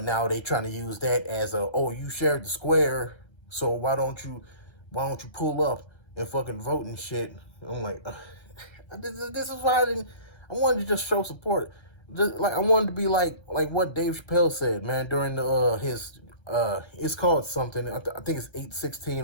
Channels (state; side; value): late; right; 1.3 ms